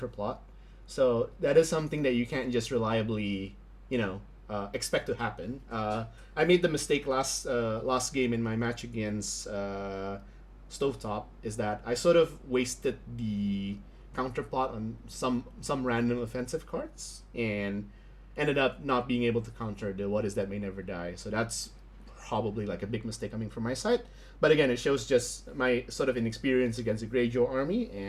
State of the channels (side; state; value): both; identical; correlation 1.00